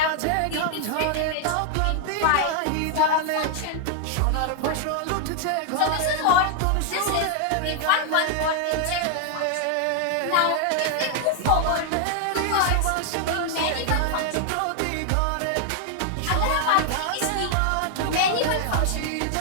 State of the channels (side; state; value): both; different; correlation 0.00